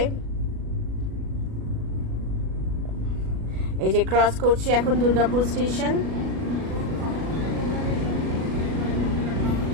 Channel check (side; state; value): left; late; 37 ms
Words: এই যে ক্রস করছি এখন দুর্গাপুর স্টেশন।